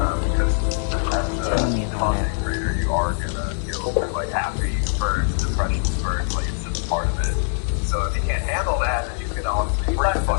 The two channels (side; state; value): right; silent; digital silence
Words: as a content creator, you are gonna go through like happy spurts, depression spurts, like it's just part of it. So if you can't handle that, then you can honestly break the